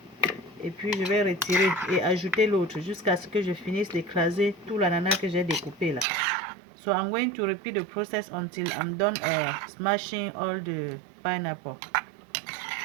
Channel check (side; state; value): left; drops out; at 6.1 s